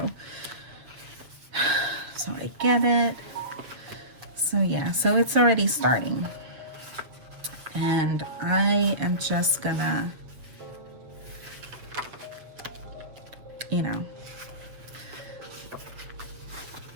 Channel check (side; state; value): left; late; 7.5 ms